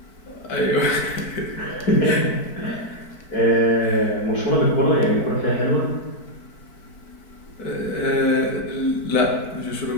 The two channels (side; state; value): right; late; 4.6 ms